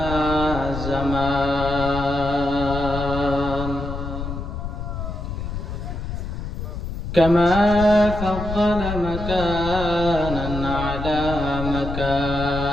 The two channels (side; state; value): left; noise; rumble, 6 dB below the sound